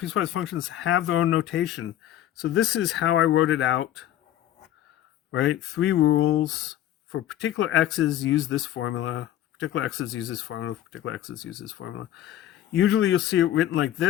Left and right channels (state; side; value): quieter; right; 12.3 dB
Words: functions have their own notation. So this is how I wrote it out, right? 3 rules. For particular x's, use this formula. Particular x's, use this formula. For particular x's, use this formula. Usually you'll see it written like